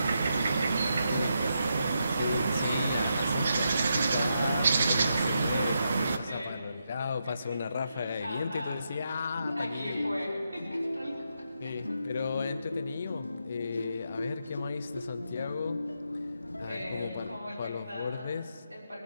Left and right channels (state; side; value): inverted; both; correlation -0.83